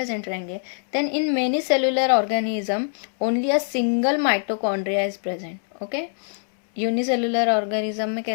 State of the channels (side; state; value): right; silent; 63 dB below the other